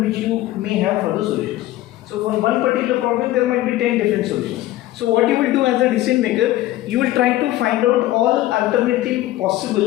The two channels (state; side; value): quieter; right; 15.6 dB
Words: which you may have for the solutions. So for one particular problem, there might be 10 different solutions. So what you will do as a decision maker, you will try to find out all alternative